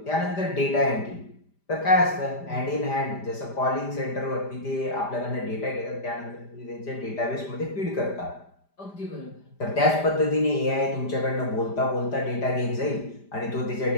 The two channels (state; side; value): late; right; 5.0 ms